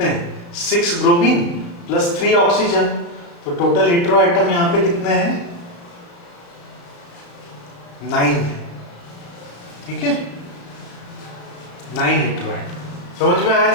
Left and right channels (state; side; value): late; right; 35 ms